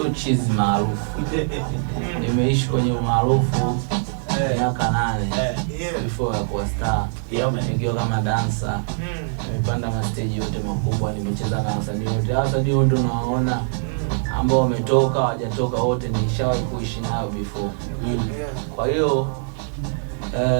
cheese maarufu. Nimeishi kwenye umaarufu miaka 8 before ya kuwa star. Nikiwa kama dancer. Nimepanda ma stage yote makubwa, nimecheza na wasanii wote. Wasanii wote unawaona ambao wametoka, hawajatoka wote nishawahi kuishi nao before. Kwa hiyo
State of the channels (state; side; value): silent; left; 64 dB below the other